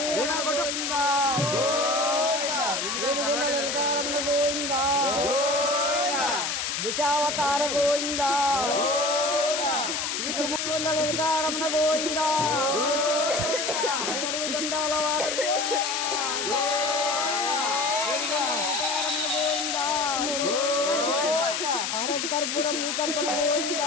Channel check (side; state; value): left; noise; hiss, 1 dB below the sound